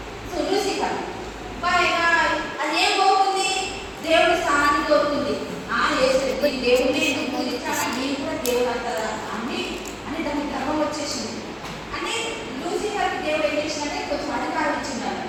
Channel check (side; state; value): both; identical; correlation 1.00